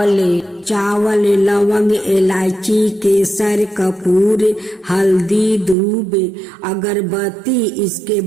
लवंग, इलायची, केसर, कपूर, हल्दी, दूब, अगरबत्ती। इसके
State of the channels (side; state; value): left; drops out; at 5.8 s